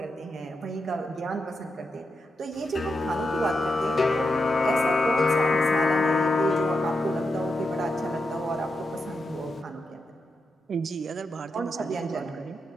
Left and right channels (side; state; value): both; normal; correlation 0.86